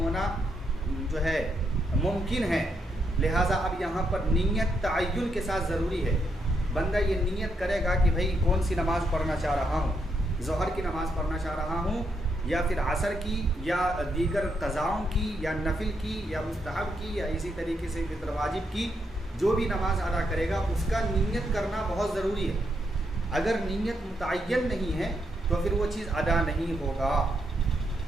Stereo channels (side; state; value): both; normal; correlation 0.79